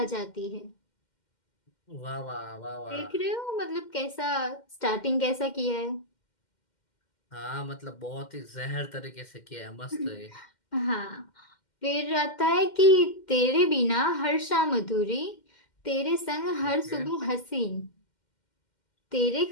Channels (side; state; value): right; late; 2.1 ms